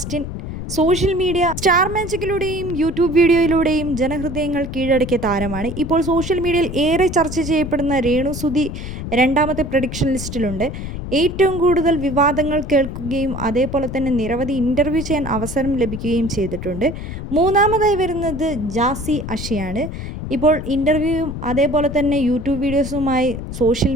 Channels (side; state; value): left; noise; rumble, 7 dB below the sound